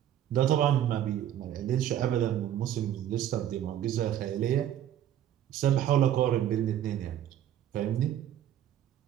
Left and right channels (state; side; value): quieter; left; 11.2 dB